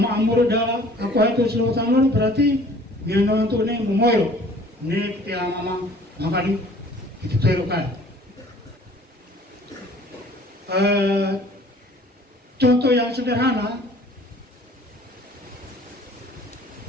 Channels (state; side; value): normal; both; correlation 0.51